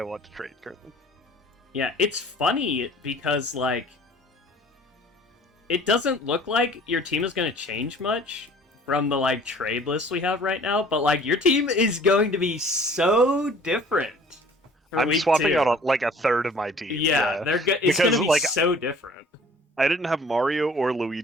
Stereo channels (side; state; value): both; normal; correlation 0.51